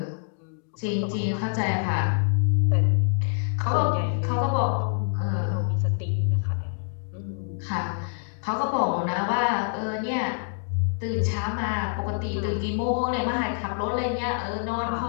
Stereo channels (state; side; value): silent; right; digital silence